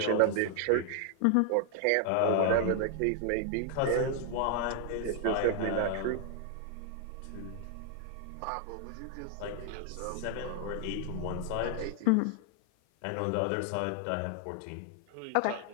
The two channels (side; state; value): both; different; correlation 0.00